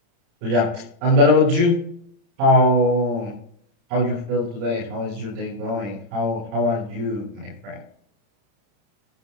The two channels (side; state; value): left; late; 35 ms